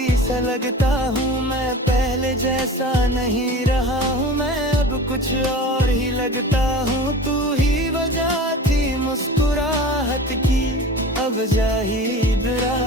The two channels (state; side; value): normal; both; correlation 0.36